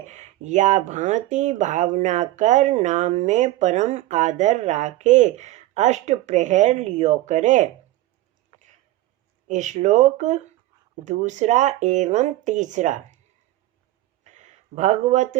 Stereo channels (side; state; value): left; quieter; 16.3 dB